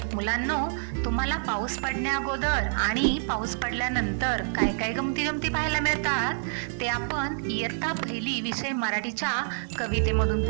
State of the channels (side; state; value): left; silent; digital silence